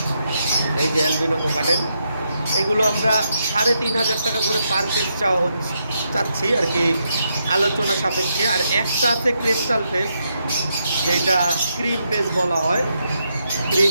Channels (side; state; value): both; inverted; correlation -0.80